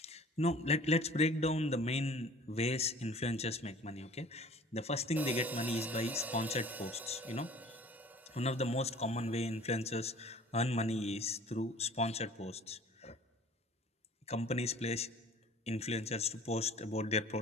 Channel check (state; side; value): normal; both; correlation 0.47